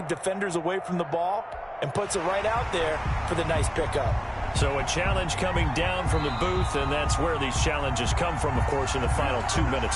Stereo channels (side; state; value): both; identical; correlation 1.00